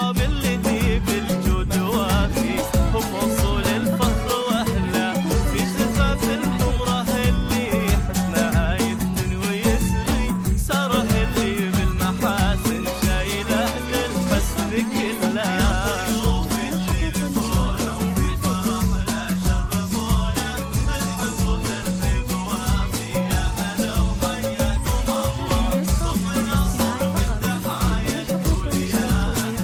اللي ذي بالجود وافيهم وصول الفخر.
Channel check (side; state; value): both; identical; correlation 1.00